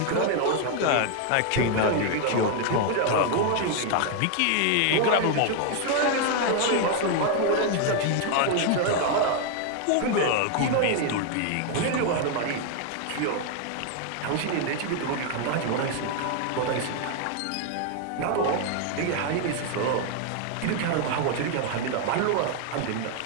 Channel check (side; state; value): both; different; correlation 0.00